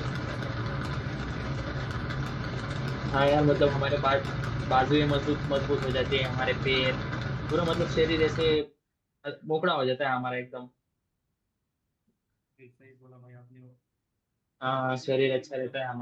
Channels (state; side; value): identical; both; correlation 1.00